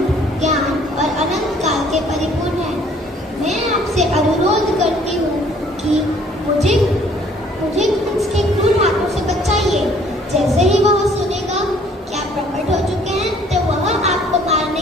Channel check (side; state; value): both; normal; correlation 0.58